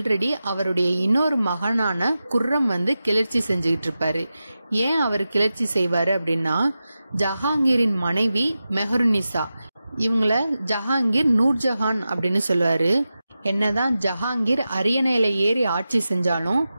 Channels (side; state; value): both; inverted; correlation -0.93